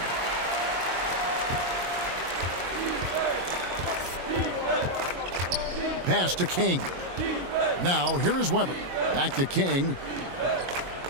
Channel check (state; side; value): late; left; 22 ms